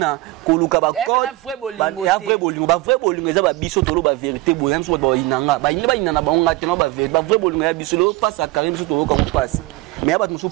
koluka ba code. Ba vrai bolingo te. Ba vrai bolingo eza ba biso tolo ba vérité boy. Misuba ba inanga. Ba inana ba onga tena ba vérité. Ba vrai bolingo ya biso lo passe à Karine biso tolo comme passe. Mais ba musu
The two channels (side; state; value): left; quieter; 19.5 dB